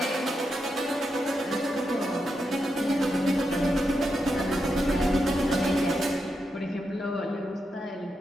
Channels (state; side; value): normal; both; correlation 0.85